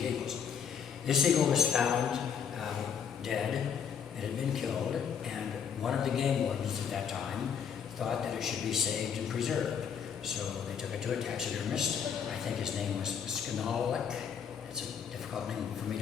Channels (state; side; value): quieter; right; 7.5 dB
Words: the eagles. This eagle was found dead. It had been killed, and one of the game wardens at that time thought that it should be saved and preserved. So they took it to a taxidermist. I think his name was Skanalik. It's a difficult name for me